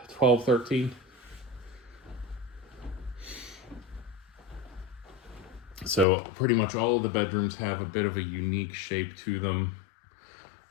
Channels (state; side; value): drops out; right; at 6.1 s